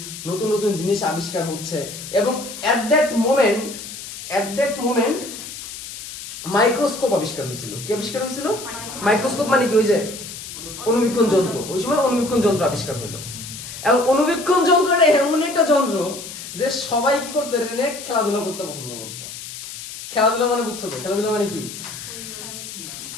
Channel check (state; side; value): noise; left; hiss, 11 dB below the sound